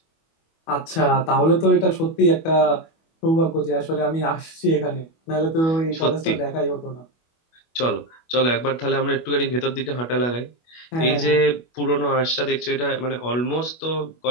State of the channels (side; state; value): right; late; 25 ms